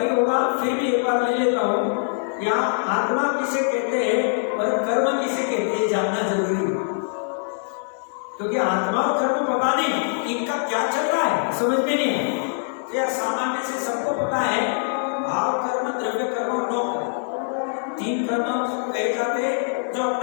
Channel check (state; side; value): silent; right; digital silence